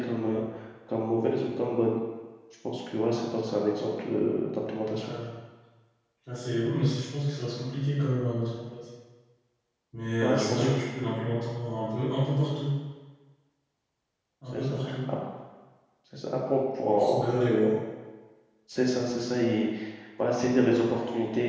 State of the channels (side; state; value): both; identical; correlation 1.00